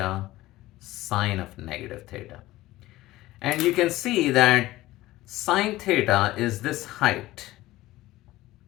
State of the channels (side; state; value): right; quieter; 17.1 dB